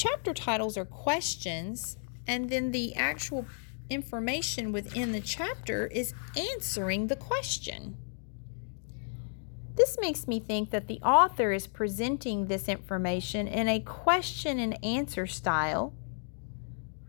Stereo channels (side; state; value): right; silent; 56 dB below the other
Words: titles are questions, and then the actual information within the chapter is answering the question. This makes me think that the author is presenting this information in a question and answer style,